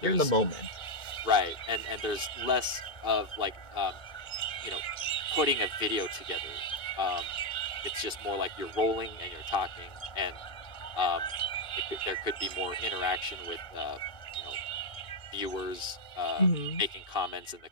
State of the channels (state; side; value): late; right; 2.5 ms